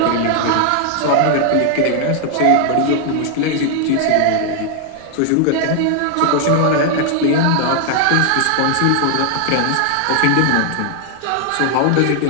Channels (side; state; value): both; different; correlation 0.00